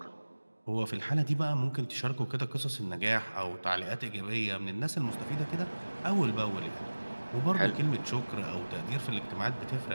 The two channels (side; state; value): both; inverted; correlation -1.00